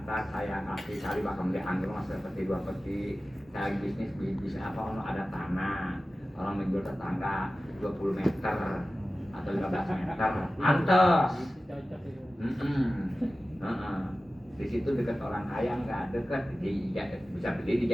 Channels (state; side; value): normal; both; correlation 0.95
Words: saya kasih cari bakal dianggur mas seperti 2 peti. Saya bisnis apa kalau ada tanah, orang menjual tetangga 20 meter atau 15 meter, pantes. Di situ dekat orang kaya nggak dekat, bisa beli